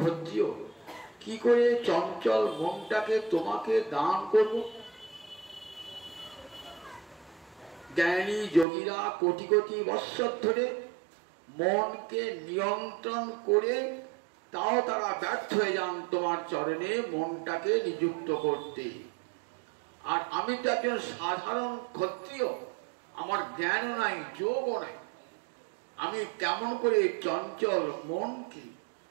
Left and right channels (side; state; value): left; drops out; at 8.7 s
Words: ক্ষত্রিয়, কি করে চঞ্চল মনটাকে তোমাকে দান করব? জ্ঞানী যোগীরা কোটি কোটি বৎসর ধরে মনকে নিয়ন্ত্রণ করে, তাও তারা ব্যর্থ হয়ে যান তোমার চরণে মনটাকে নিযুক্ত করতে। আর আমি তো একজন সাধারণ ক্ষত্রিয়, আমার জ্ঞানও নাই, যোগও নাই, আমি কেমন করে চঞ্চল মনকে